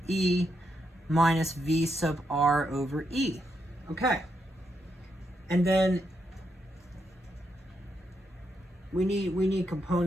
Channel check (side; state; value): both; normal; correlation 0.81